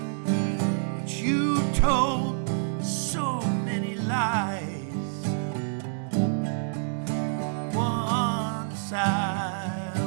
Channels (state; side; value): silent; left; 60 dB below the other